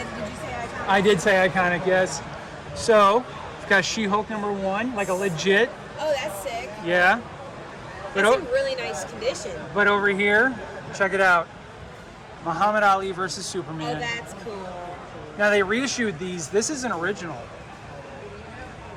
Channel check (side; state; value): both; identical; correlation 1.00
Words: Did you say iconic? I did say iconic, yes. So, we've got She-Hulk #1, like a legit. Oh, that's sick. Yeah. But, That's in really nice condition. but over here, check it out. Muhammad Ali versus Oh, Superman. that's cool. Now they reissued these. This is an original.